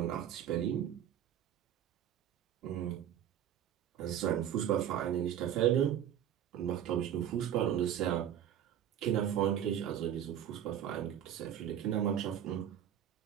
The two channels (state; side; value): quieter; left; 10.2 dB